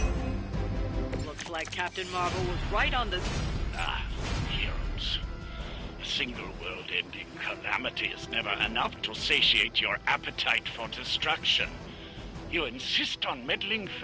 Looks like Captain Marvel was right on the... Heroes. A single world-ending calamity is never enough to satiate your appetite for destruction. You insist on meddling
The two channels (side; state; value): both; identical; correlation 1.00